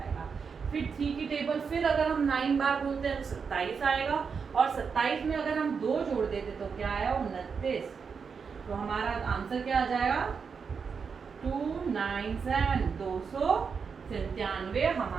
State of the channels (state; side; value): quieter; left; 5.8 dB